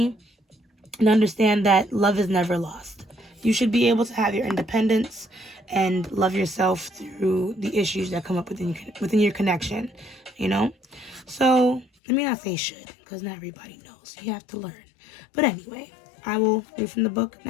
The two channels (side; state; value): right; drops out; at 11.9 s